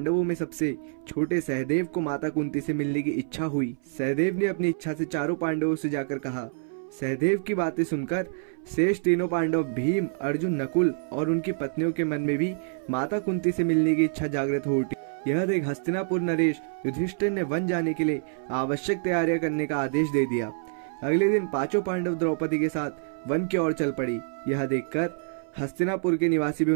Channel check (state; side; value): silent; left; 60 dB below the other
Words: में सबसे छोटे सहदेव को माता कुंती से मिलने की इच्छा हुई। सहदेव ने अपनी इच्छा से चारों पांडवों से जाकर कहा। सहदेव की बातें सुनकर शेष तीनों पांडव भीम, अर्जुन, नकुल और उनकी पत्नियों के मन में भी माता कुंती से मिलने की इच्छा जागृत हो उठी। यह देख हस्तिनापुर नरेश युधिष्ठिर ने वन जाने के लिए आवश्यक तैयारियां करने का आदेश दे दिया। अगले दिन पांचों पांडव द्रौपदी के साथ वन की ओर चल पड़ी। यह देखकर हस्तिनापुर के निवासी भी